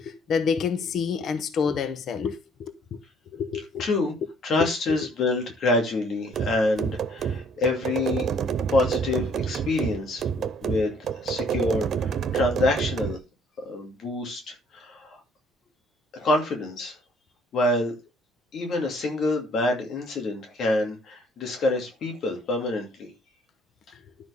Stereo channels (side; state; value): both; normal; correlation 0.60